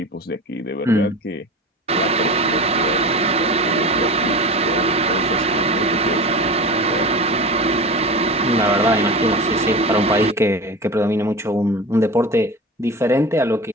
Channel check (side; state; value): both; normal; correlation 0.30